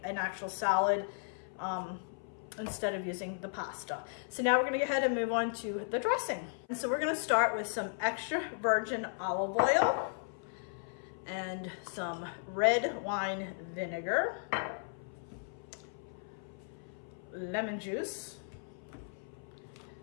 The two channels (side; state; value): right; silent; 54 dB below the other